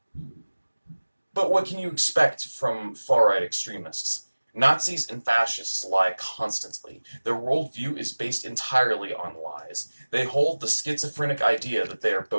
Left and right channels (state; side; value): inverted; both; correlation -1.00